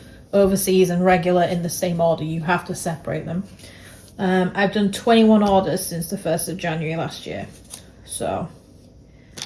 overseas and regular in the same order. You have to separate them. I've done 21 orders since the 1st of January last year. So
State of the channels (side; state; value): both; identical; correlation 1.00